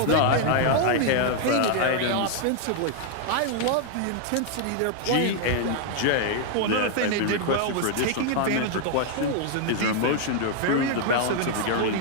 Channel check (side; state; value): both; different; correlation 0.00